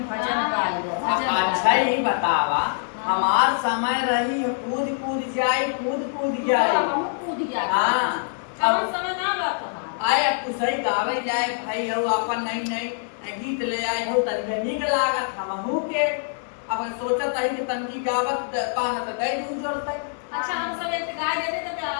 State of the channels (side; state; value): right; silent; digital silence